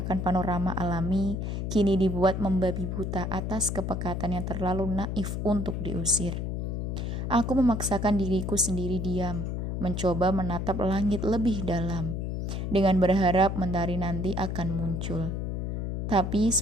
panorama alami kini dibuat membabi buta atas kepekatan yang terlalu naif untuk diusir. Aku memaksakan diriku sendiri diam, mencoba menatap langit lebih dalam, dengan berharap mentari nanti akan muncul. Tapi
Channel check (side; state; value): left; noise; hum, 2 dB below the sound